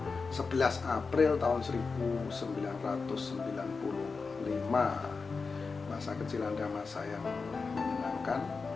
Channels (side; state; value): right; quieter; 4.6 dB